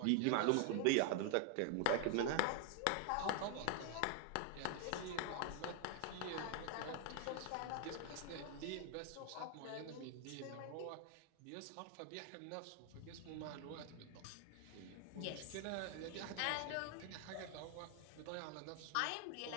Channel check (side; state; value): both; different; correlation 0.00